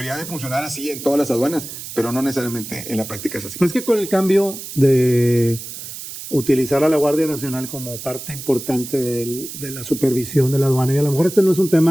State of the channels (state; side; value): noise; right; hiss, 11 dB below the sound